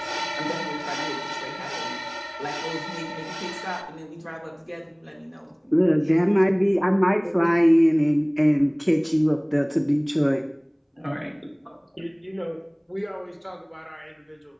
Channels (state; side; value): identical; both; correlation 1.00